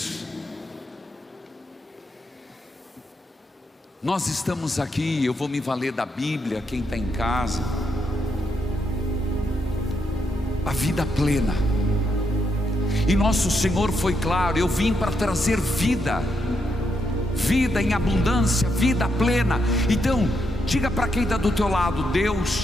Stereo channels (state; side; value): normal; both; correlation 0.80